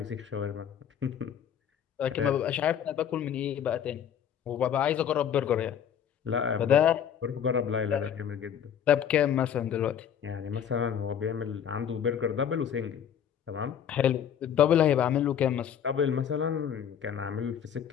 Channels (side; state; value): right; quieter; 8.8 dB